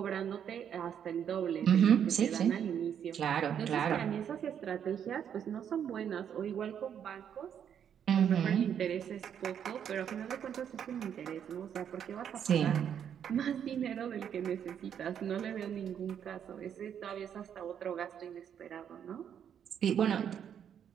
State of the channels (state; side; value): quieter; left; 8.7 dB